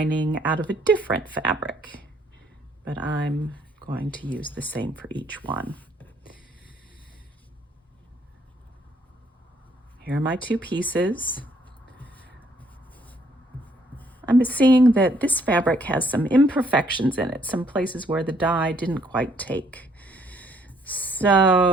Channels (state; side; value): normal; both; correlation 0.66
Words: out of a different fabric, but I'm going to use the same for each one. Here are my 2 pieces. I'm seeing that this fabric has some imperfections in it, some places where the dye didn't quite take.